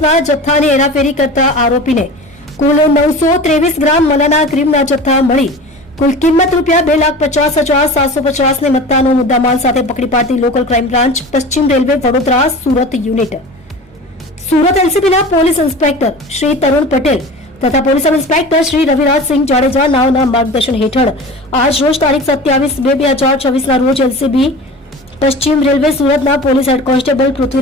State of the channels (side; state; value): both; normal; correlation 0.35